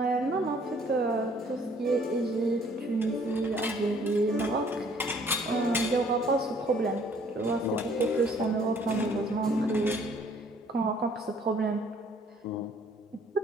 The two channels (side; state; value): both; normal; correlation 0.60